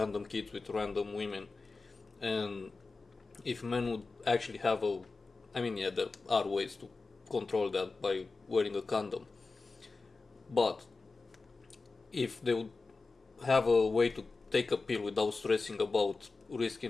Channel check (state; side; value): quieter; right; 3.9 dB